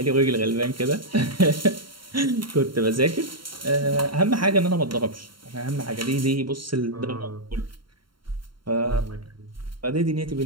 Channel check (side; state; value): left; late; 0.73 ms